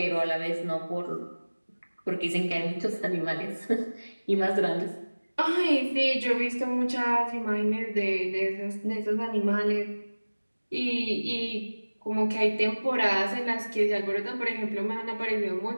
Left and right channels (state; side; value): inverted; both; correlation -1.00